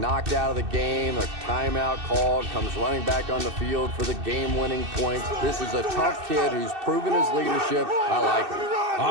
out of the game, a timeout called, comes running back on the field for the game-winning points. This is a tough kid who's proven his leadership. I like him.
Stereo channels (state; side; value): late; left; 2.6 ms